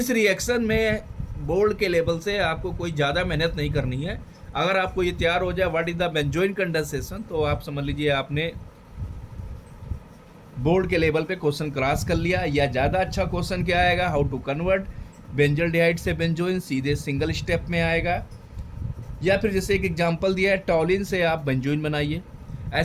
रिएक्शन में बोर्ड के लेवल से आपको कोई ज़्यादा मेहनत नहीं करनी है। अगर आपको ये तैयार हो जाए what is the benzoin condensation, तो आप समझ लीजिए आपने बोर्ड के लेवल पे क्वेश्चन क्रॉस कर लिया। या ज़्यादा अच्छा क्वेश्चन क्या आएगा, हाउ टू कन्वर्ट बेंजल्डिहाइड से बेंजोइन, सीधे सिंगल स्टेप में आएगा। या फिर जैसे एक एग्जांपल दिया है, टॉलिन से आप बेंजोइन बनाइए।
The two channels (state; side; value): identical; both; correlation 1.00